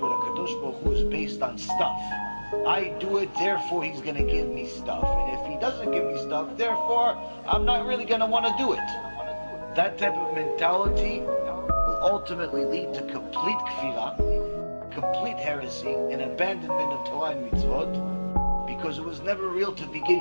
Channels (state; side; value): inverted; both; correlation -1.00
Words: with HaKadosh Baruch Hu is based on stuff, I do it, therefore He's going to give me stuff. And if He doesn't give me stuff, therefore I'm not really going to want to do it. That type of mentality will ultimately lead to complete kfirah, complete heresy, and abandonment of Torah and mitzvot, because it was never real to